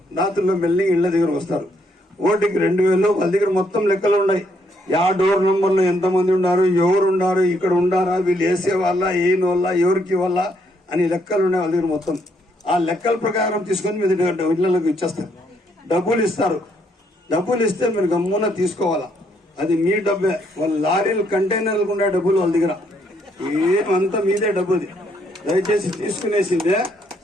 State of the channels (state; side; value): normal; both; correlation 0.72